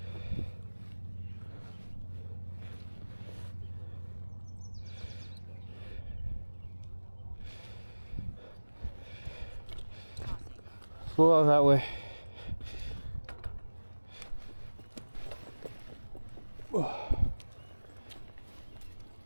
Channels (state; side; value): inverted; both; correlation -1.00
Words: Go out that way.